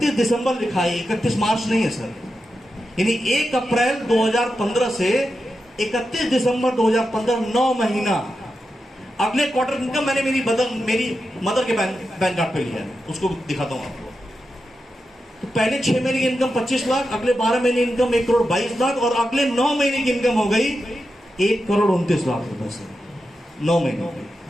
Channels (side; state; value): both; normal; correlation 0.89